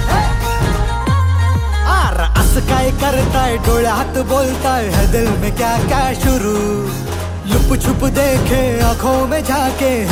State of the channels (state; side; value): identical; both; correlation 1.00